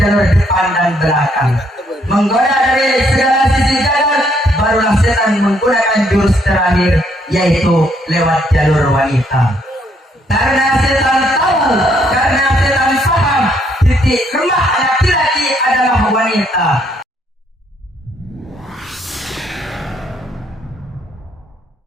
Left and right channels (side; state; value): both; normal; correlation 0.70